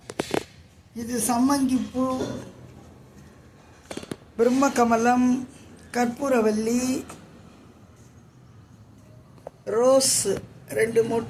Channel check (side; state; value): both; identical; correlation 1.00